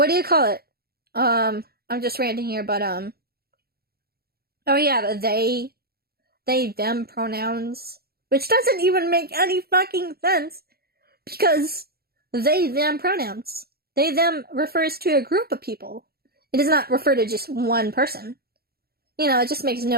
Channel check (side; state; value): left; late; 0.45 ms